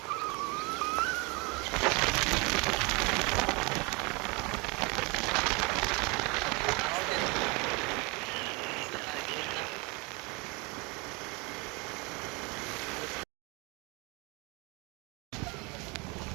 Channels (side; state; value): left; quieter; 28.1 dB